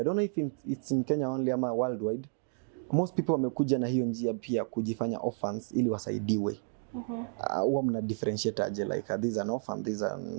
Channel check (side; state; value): left; silent; 57 dB below the other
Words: don't know if it's in Kenya only ama worldwide, most people wamekuja na hiyo njia pia kujifanya orphans ili wasaidiwe. Huwa mna differentiate aje, like this is an orphan, this